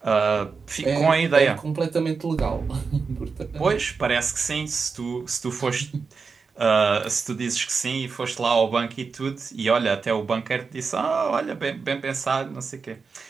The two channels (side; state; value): left; quieter; 5.0 dB